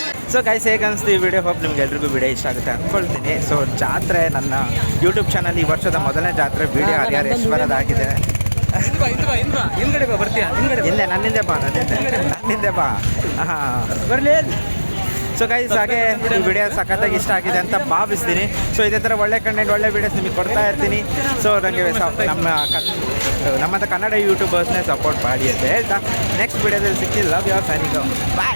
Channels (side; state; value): both; inverted; correlation -1.00